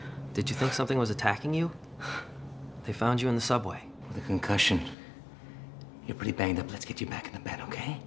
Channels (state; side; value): drops out; right; at 5.0 s